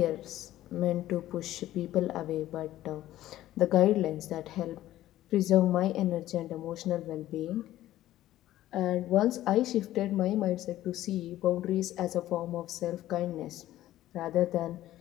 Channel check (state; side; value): quieter; right; 14.2 dB